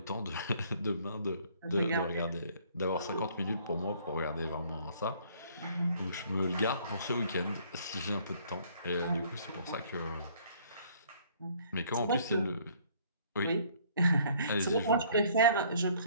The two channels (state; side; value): inverted; both; correlation -0.59